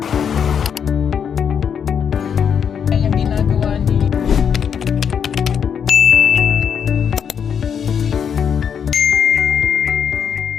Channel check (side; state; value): right; quieter; 7.5 dB